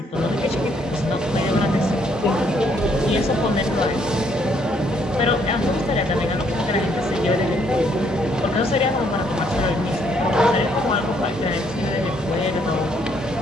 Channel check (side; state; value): both; normal; correlation 0.69